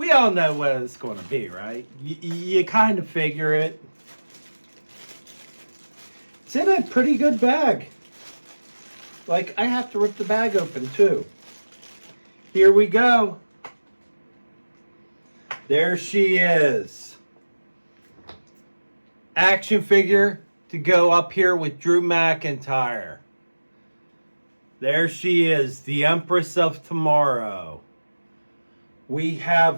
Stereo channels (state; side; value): inverted; both; correlation -1.00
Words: all know what it's going to be, right? You kind of figure it. It's in a pretty good bag. Like, I have to rip the bag open, too. Here we go. There she is. Action figure to go up here with Drew McIntyre. There she is, the Empress of Tomorrow. We